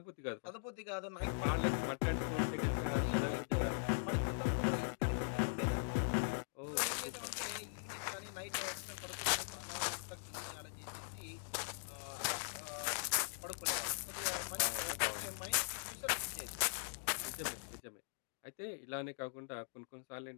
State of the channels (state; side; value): silent; right; digital silence